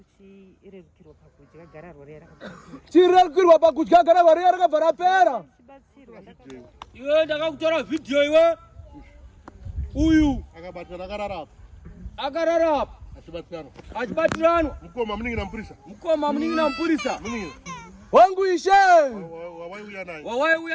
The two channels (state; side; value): identical; both; correlation 1.00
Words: Chirerukirwa pakudya gararwa riya rakapera. Chirerukirwa pakudya gararwa riya rakabva rapera. Iwe ndakakutora video iwe. Uyu Akabatana akarara apa. Akarara apa. Achibatirano. Mukoma muningina mpurisa. Mukoma muningina mpurisa. Muningina. Wangu Ishe. Wawaiuya naye.